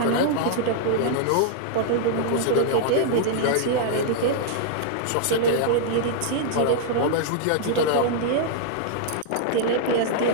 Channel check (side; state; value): both; different; correlation -0.01